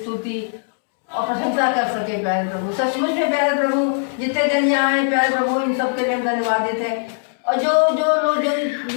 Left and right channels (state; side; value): silent; right; digital silence